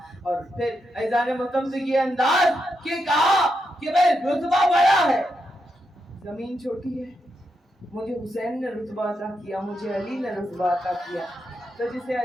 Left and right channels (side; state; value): both; normal; correlation 0.84